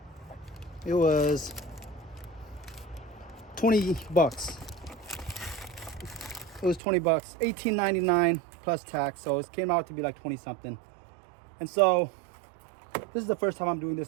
20 bucks. It was 20 bucks, $18.99 plus tax, so it came out to be like 20 something. And so this is the first time I'm doing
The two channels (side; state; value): left; drops out; at 6.8 s